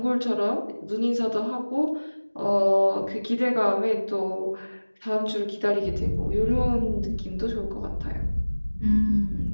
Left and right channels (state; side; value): inverted; both; correlation -1.00